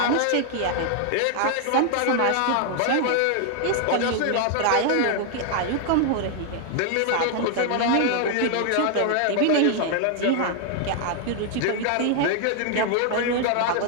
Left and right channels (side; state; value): both; different; correlation 0.00